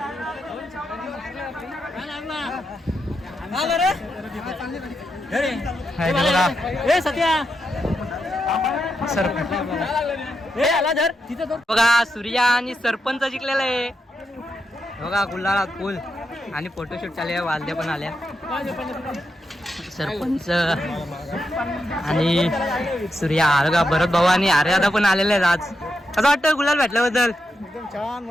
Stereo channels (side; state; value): both; normal; correlation 0.85